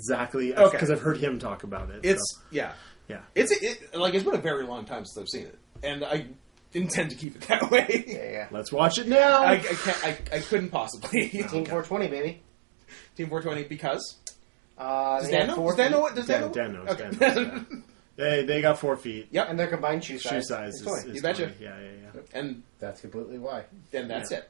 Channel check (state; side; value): drops out; left; at 7.2 s